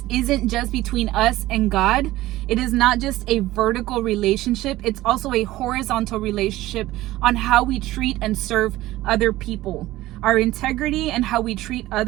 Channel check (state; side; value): quieter; left; 16.6 dB